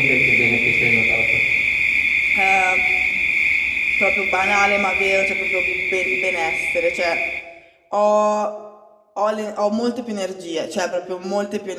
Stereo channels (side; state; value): both; identical; correlation 1.00